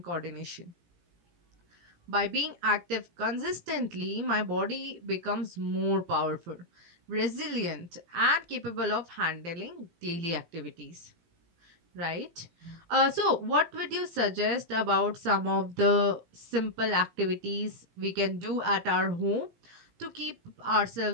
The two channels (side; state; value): left; late; 17 ms